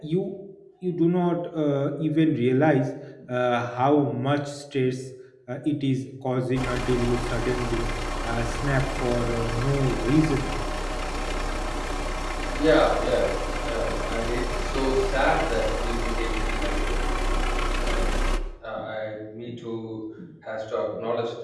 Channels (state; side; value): identical; both; correlation 1.00